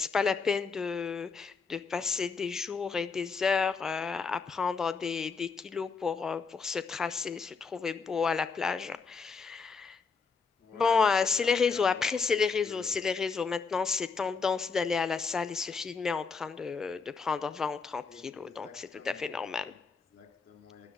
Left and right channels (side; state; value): right; quieter; 5.1 dB